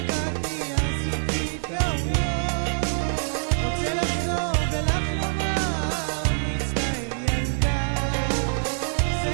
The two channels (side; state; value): left; silent; digital silence